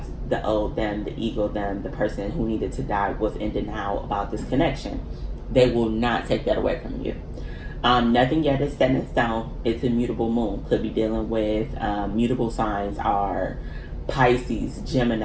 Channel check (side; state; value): both; identical; correlation 1.00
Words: the old them, the ego them, the person who needed to die was in denial about this connection. They will not take that away from you. Nothing yet is set in stone. It's a mutable moon. Could be dealing with mutable signs are Pisces,